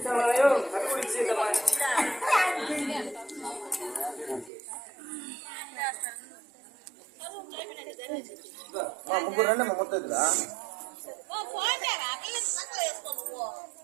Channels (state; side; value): drops out; left; at 4.5 s